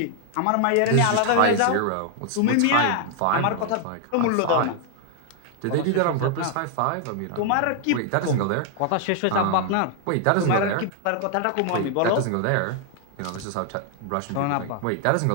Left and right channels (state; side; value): different; both; correlation 0.00